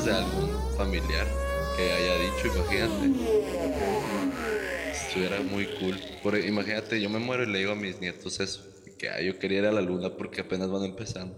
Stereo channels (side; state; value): both; identical; correlation 1.00